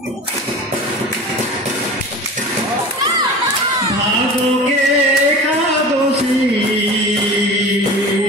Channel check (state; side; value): normal; both; correlation 0.35